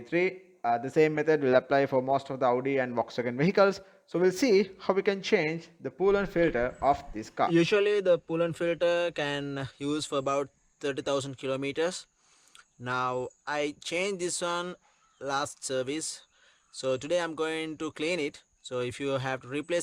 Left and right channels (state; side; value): identical; both; correlation 1.00